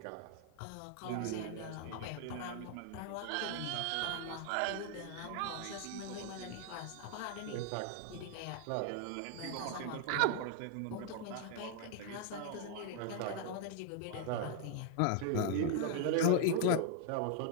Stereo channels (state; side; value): different; both; correlation 0.00